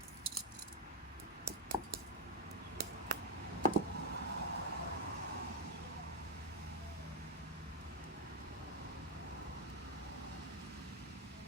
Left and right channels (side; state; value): both; normal; correlation 0.04